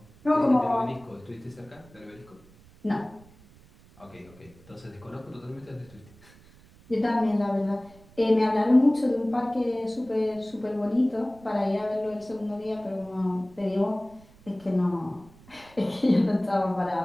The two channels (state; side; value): noise; right; rumble, 25 dB below the sound